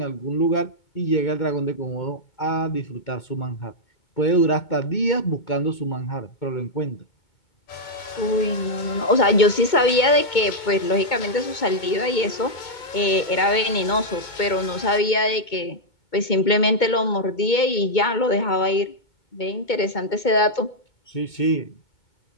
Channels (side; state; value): right; late; 2.2 ms